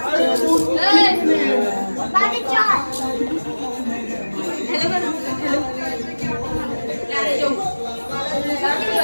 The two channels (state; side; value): inverted; both; correlation -1.00